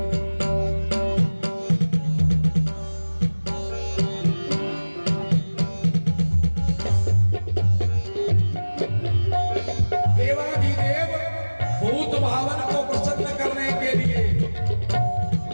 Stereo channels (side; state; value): both; inverted; correlation -1.00